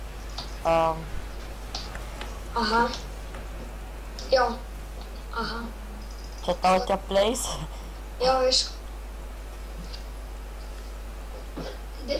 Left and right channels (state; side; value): identical; both; correlation 1.00